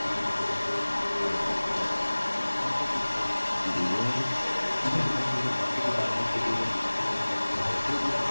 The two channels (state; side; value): inverted; both; correlation -1.00